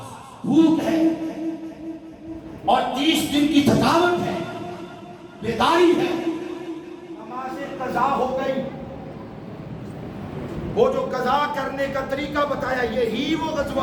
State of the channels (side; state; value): both; identical; correlation 1.00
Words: بھوک ہے, اور 30 دن کی تھکاوٹ ہے, بیداری ہے. نماز قضا ہو گئی. وہ جو قضا کرنے کا طریقہ بتایا یہی وہ